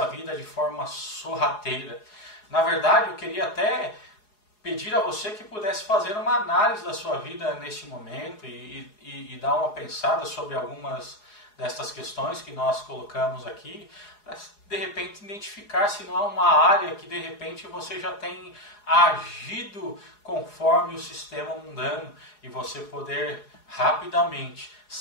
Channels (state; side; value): late; right; 4.8 ms